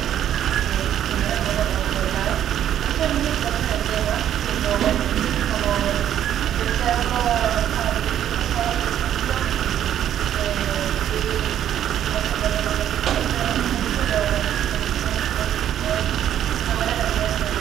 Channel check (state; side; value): quieter; left; 10.7 dB